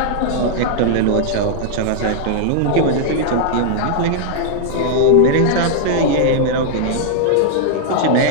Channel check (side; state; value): both; different; correlation -0.01